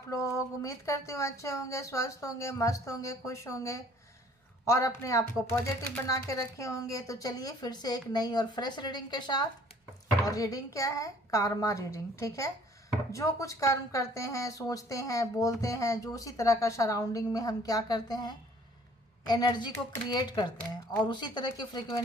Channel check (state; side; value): normal; both; correlation 0.56